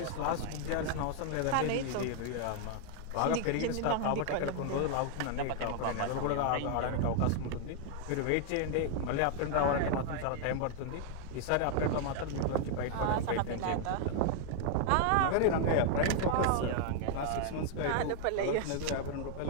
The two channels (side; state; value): both; different; correlation 0.00